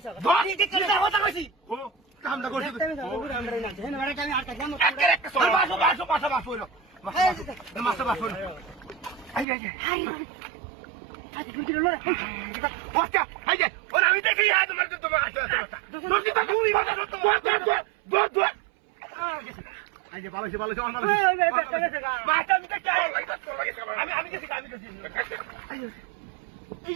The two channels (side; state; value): left; drops out; at 9.5 s